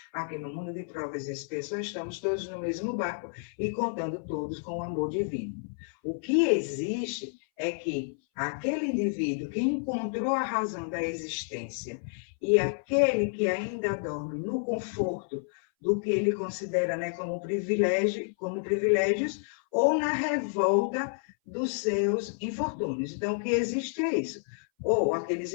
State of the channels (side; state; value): right; silent; 58 dB below the other